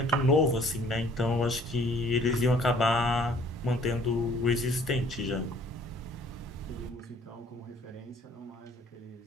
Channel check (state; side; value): normal; both; correlation 0.57